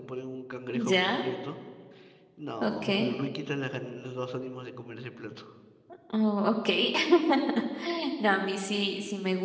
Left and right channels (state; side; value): identical; both; correlation 1.00